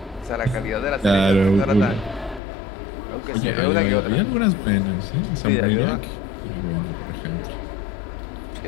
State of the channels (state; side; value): drops out; right; at 2.4 s